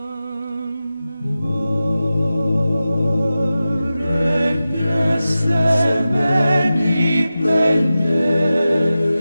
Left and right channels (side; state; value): both; inverted; correlation -0.93